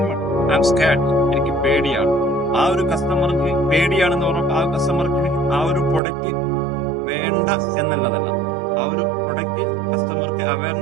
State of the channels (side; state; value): left; drops out; at 6.0 s